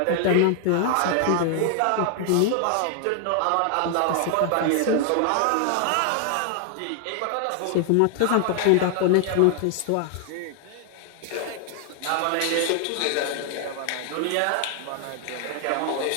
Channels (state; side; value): different; both; correlation 0.00